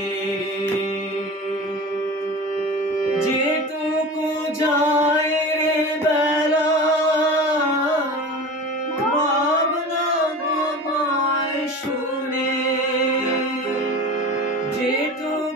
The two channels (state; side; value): normal; both; correlation 0.33